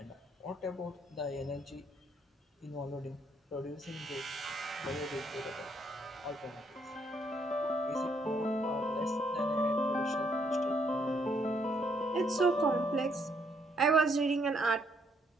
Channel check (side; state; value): both; normal; correlation 0.71